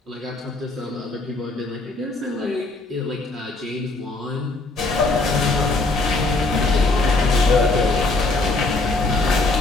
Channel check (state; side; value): quieter; right; 3.3 dB